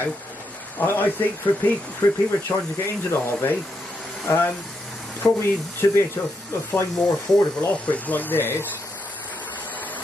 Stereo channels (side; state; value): both; normal; correlation 0.81